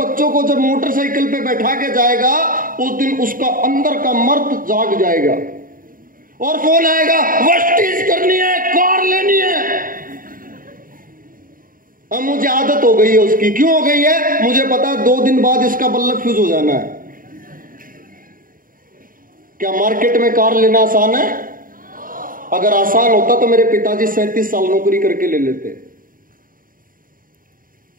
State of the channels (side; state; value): left; late; 0.40 ms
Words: को जब मोटरसाइकिल पे बैठा के जाएगा, उस दिन उसका अंदर का मर्द जाग जाएगा और फोन आएगा, वेस्टीज करनी है, कार लेनी है। अब मुझे आदत हो गई है उसकी। क्यों हो गई है? मुझे पता है 2 दिन बाद इसका बल्ब फ्यूज हो जाना है। क्या मार्केट में कार लेना आसान है? अगर आसान होता तो मेरे पिताजी 37 साल नौकरी करके ले लेते।